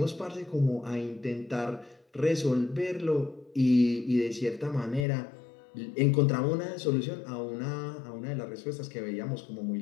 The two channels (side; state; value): right; drops out; at 5.1 s